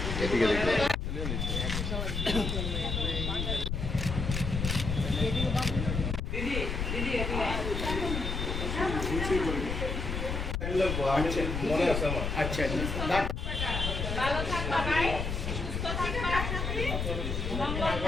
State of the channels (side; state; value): left; noise; rumble, 2 dB below the sound